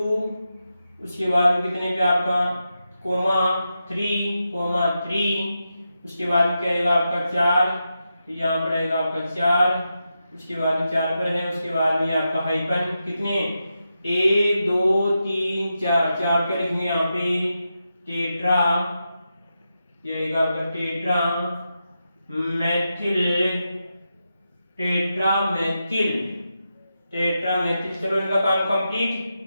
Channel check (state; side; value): inverted; both; correlation -0.88